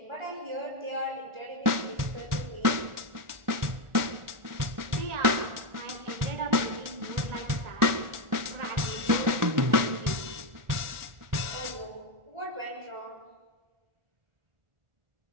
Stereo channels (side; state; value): left; late; 1.4 ms